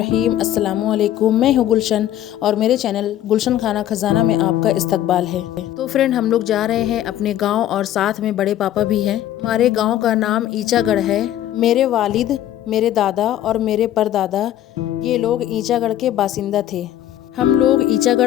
अस्सलामुअलैकुम। मैं हूँ गुलशन और मेरे चैनल गुलशन खाना खजाना में आपका इस्तकबाल है। तो फ्रेंड, हम लोग जा रहे हैं अपने गांव और साथ में बड़े पापा भी हैं। हमारे गांव का नाम ईचागढ़ है। मेरे वालिद, मेरे दादा और मेरे परदादा ये लोग ईचागढ़ के बासिंदा थे। हम लोग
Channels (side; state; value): right; quieter; 12.3 dB